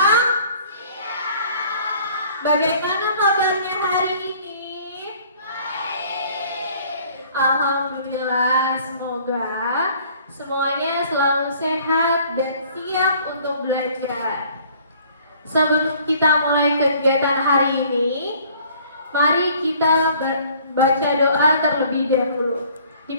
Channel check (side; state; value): both; inverted; correlation -0.55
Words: Bagaimana kabarnya hari ini? Baik. Alhamdulillah, semoga semuanya selalu sehat dan siap untuk belajar. Sebelum kita mulai kegiatan hari ini, mari kita baca doa terlebih dahulu,